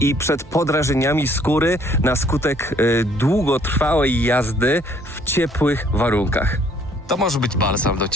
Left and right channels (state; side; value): normal; both; correlation 0.62